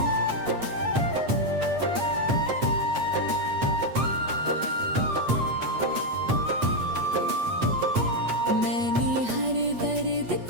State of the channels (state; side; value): late; left; 8.3 ms